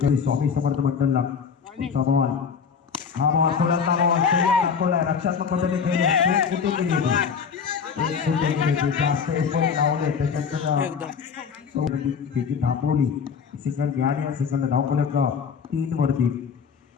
स्वामी समर्थ मंडलला. पुढचा बॉल हा बॉल फुलंदा बॉल दाखवलाय. रक्षात्मक पद्धतीने खेळले कुठे गेली जास्त एफर्ट लावले त्याच्यात थांबवली. सिंगल घ्या सिंगल धावफलक 3 वरती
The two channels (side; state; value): right; quieter; 6.3 dB